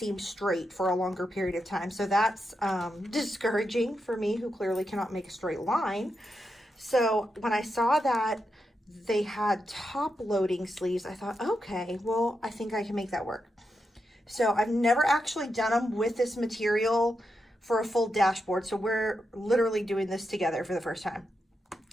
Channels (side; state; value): both; normal; correlation 0.86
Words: straight for a longer period of time. So that's discouraging for me, who clearly cannot make a straight line. So when I saw that they had top loading sleeves, I thought, okay, well, I think I can make that work. So I've never actually done them with this material for a full dashboard. So we're literally doing this together for the first time.